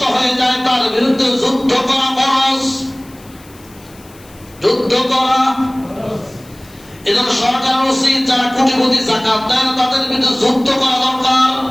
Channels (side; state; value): left; noise; hiss, 25 dB below the sound